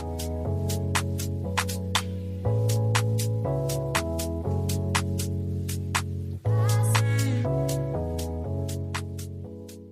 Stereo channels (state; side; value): identical; both; correlation 1.00